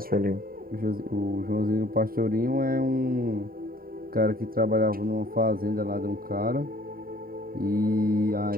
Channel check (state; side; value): late; left; 0.43 ms